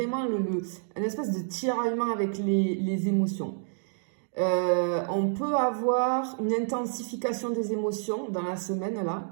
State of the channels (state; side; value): silent; left; digital silence